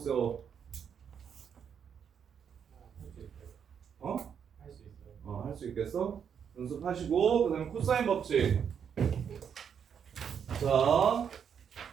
어? 할 수 있어요. 할 수 있겠어? 연습하시고 그 다음에 코사인 법칙. 자,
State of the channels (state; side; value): quieter; left; 7.7 dB